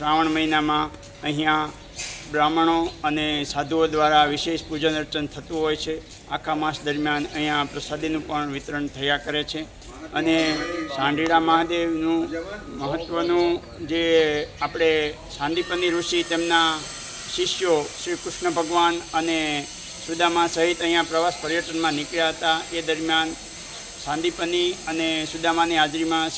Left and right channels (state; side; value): identical; both; correlation 1.00